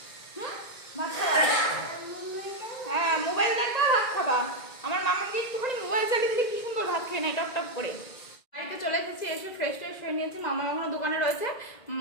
ভাত খাবা? হ্যাঁ, মোবাইল দেখবা, ভাত খাবা। আমার মামাকে একটুখানি মোবাইল চালিয়ে দিলে কি সুন্দর ভাত খেয়ে নেয় টপ টপ করে। বাড়িতে চলে এসেছি, এসে ফ্রেশ হয়ে নিয়েছি। মামা এখনো দোকানে রয়েছে,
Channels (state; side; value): late; right; 1.9 ms